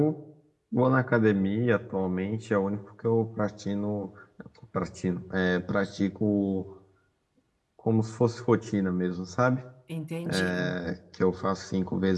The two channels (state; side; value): identical; both; correlation 1.00